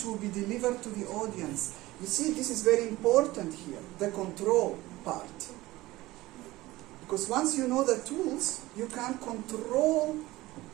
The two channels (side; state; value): left; quieter; 18.4 dB